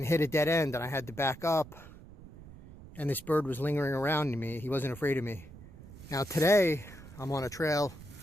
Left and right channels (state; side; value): noise; right; rumble, 17 dB below the sound